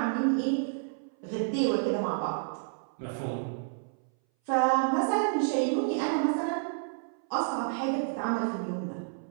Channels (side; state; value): left; silent; 58 dB below the other